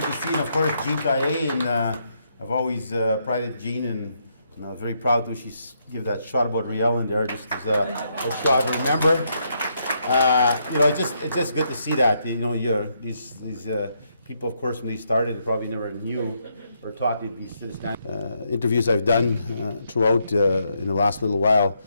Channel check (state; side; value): inverted; both; correlation -0.77